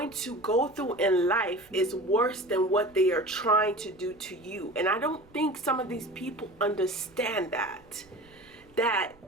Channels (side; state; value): right; noise; rumble, 28 dB below the sound